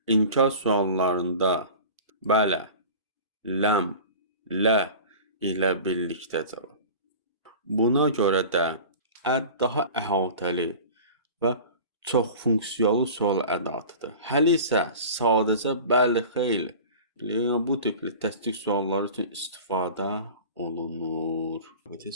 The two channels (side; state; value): both; inverted; correlation -0.38